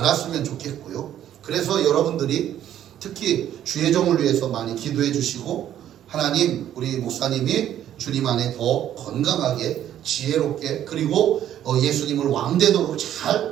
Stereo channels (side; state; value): left; quieter; 11.1 dB